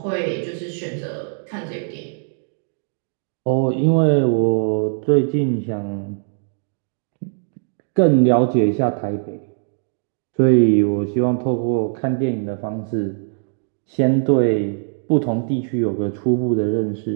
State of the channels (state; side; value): silent; left; digital silence